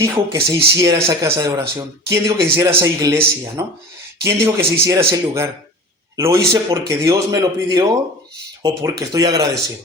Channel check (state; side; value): normal; both; correlation 0.36